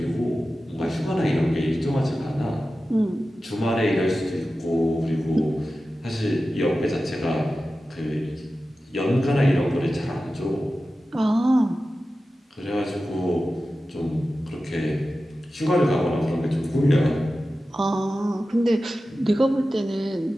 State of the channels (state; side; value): normal; both; correlation 0.94